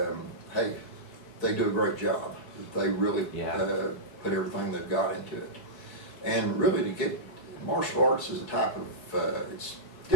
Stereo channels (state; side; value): late; right; 4.6 ms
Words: do a great job. They really put everything they've got into it. And really, to get martial arts is a type of, it's